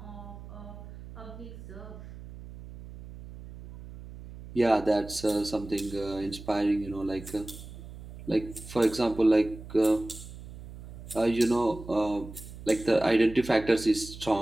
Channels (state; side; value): noise; right; hum, 14 dB below the sound